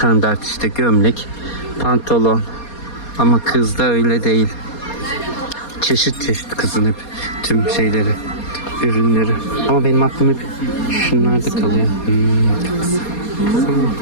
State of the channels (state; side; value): late; right; 4.2 ms